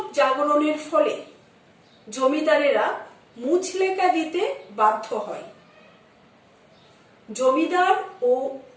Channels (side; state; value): both; identical; correlation 1.00